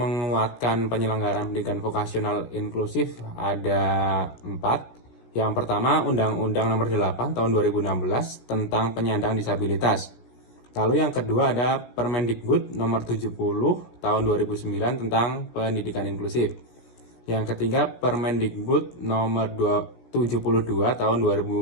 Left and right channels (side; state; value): right; late; 17 ms